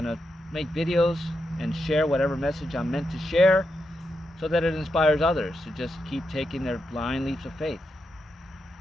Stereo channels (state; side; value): normal; both; correlation 0.85